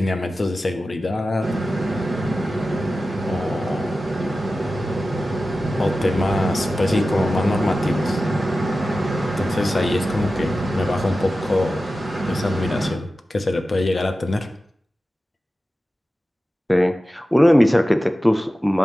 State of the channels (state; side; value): normal; both; correlation 0.94